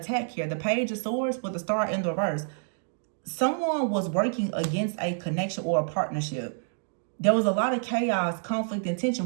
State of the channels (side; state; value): left; silent; digital silence